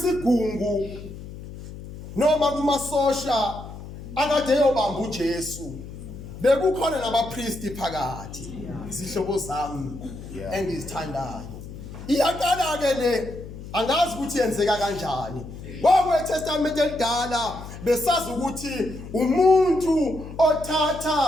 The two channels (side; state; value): left; noise; hum, 13 dB below the sound